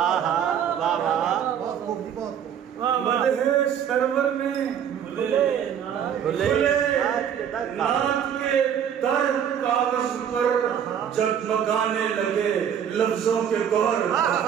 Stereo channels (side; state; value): left; quieter; 8.7 dB